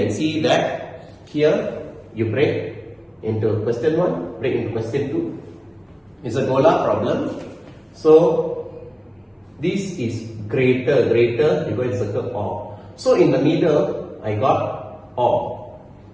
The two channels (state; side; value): identical; both; correlation 1.00